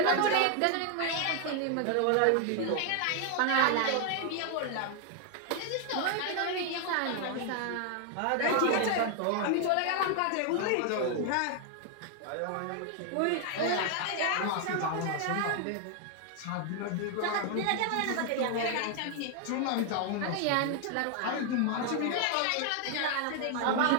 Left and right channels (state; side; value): different; both; correlation 0.00